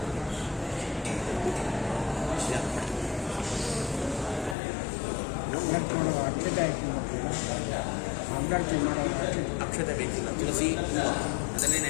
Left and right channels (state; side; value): drops out; right; at 4.5 s